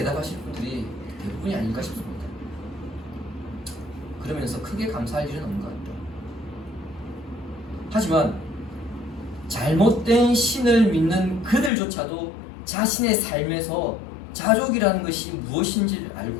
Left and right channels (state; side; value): drops out; right; at 11.7 s